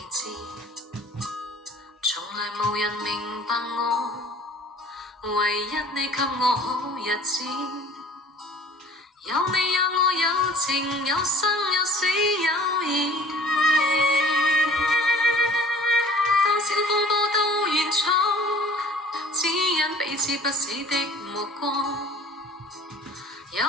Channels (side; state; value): both; normal; correlation 0.49